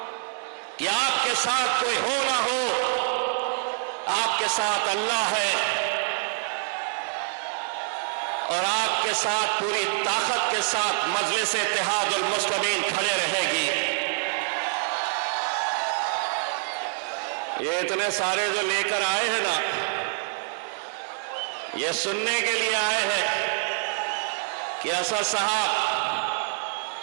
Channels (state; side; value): silent; left; 61 dB below the other